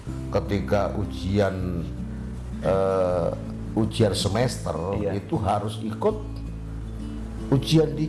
ketika ujian semester Iya. itu harus ikut ujian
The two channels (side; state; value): both; identical; correlation 1.00